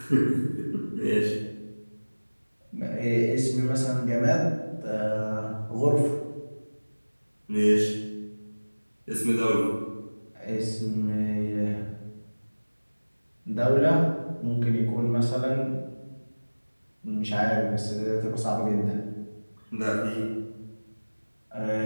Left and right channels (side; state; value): both; inverted; correlation -1.00